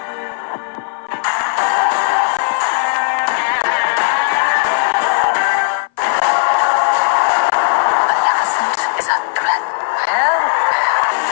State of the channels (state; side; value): silent; right; 58 dB below the other